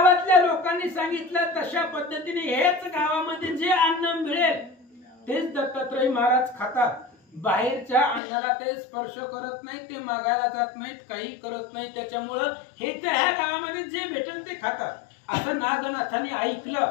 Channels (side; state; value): right; drops out; at 8.2 s